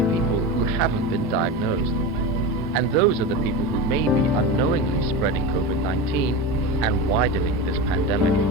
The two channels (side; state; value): both; normal; correlation 0.23